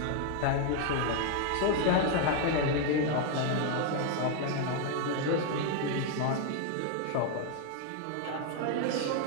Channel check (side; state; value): both; different; correlation 0.01